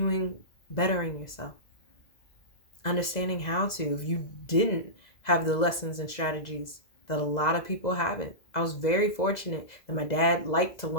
bettering yourself. Understanding how to, if you didn't have the lessons and strategies that a lot of people haven't. I was very fortunate that my dad liked to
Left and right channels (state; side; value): late; right; 2.0 ms